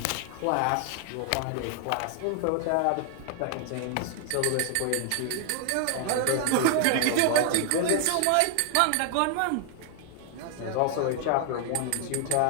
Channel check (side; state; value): both; different; correlation 0.00